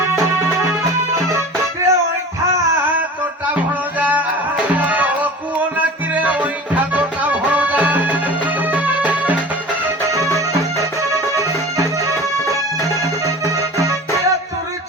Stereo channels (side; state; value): both; normal; correlation 0.38